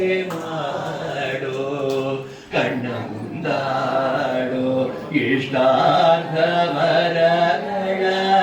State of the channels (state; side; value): identical; both; correlation 1.00